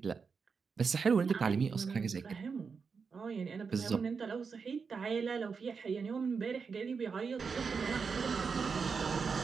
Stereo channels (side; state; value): left; quieter; 5.4 dB